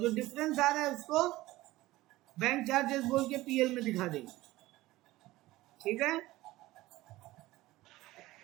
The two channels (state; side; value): quieter; left; 17.8 dB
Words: डिफरेंस आ रहा है उसको बैंक चार्जेस बोल के पीएल में दिखा देंगे, ठीक है।